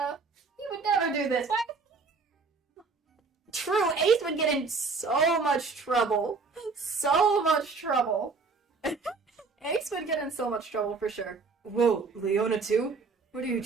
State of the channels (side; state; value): left; quieter; 4.4 dB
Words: You would never do this. Why? True, Ace would get in so much trouble. So much trouble. Ace would get in so much trouble for sure. Whoa, Leona too? What are you